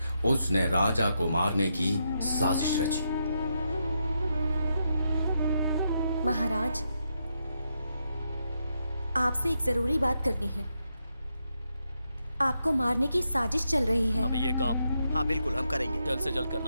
उसने राजा को मारने की साजिश रची। महाराज, आपसे एक जरूरी बात करनी है। आपको मारने की साजिश चल रही है। हमें ये काम हाँ बिल्कुल हम करेंगे, जल्द से जल्द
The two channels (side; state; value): both; inverted; correlation -0.82